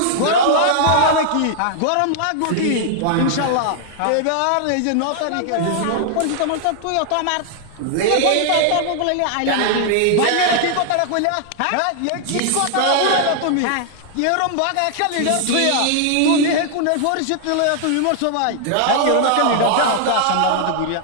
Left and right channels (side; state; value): both; different; correlation 0.00